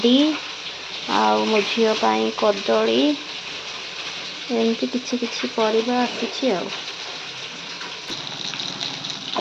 मो झील पाई कदली एमती किछि किछि परिबा आसी।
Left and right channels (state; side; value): identical; both; correlation 1.00